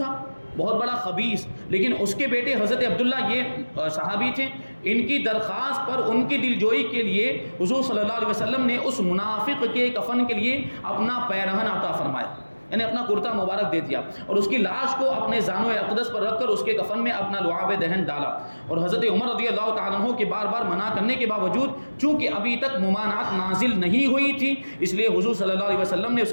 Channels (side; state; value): both; inverted; correlation -1.00